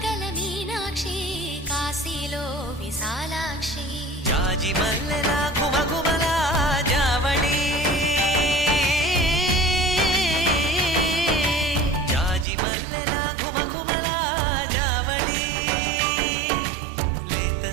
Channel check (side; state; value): left; drops out; at 12.5 s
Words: మీనాక్షి కాశీలో విశాలాక్షి జాజి మల్లెలా గుమగుమలా జావళి జాజి మల్లెలా గుమగుమలా జావళి లేత